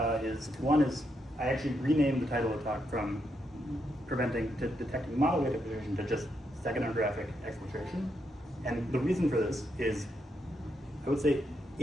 is I actually renamed the title of the talk from detecting model weight exfiltration to just steganographic exfiltration. And the reason for this is, I would say,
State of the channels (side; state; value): both; normal; correlation 0.80